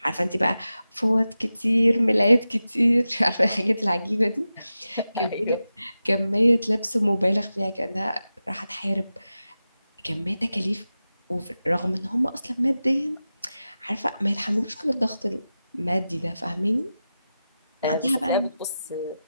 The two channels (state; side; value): inverted; both; correlation -0.93